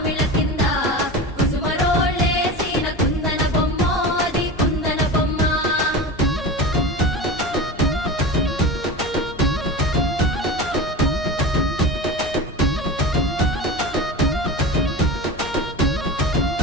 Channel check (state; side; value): normal; both; correlation 0.29